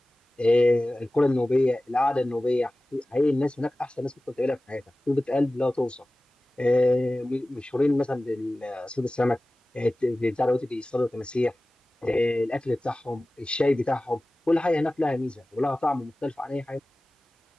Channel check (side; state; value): both; normal; correlation 0.97